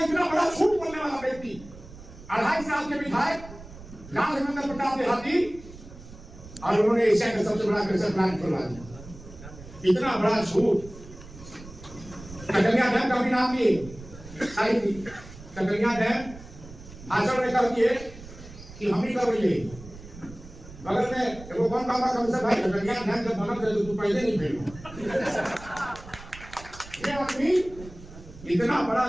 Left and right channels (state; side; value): noise; right; rumble, 16 dB below the sound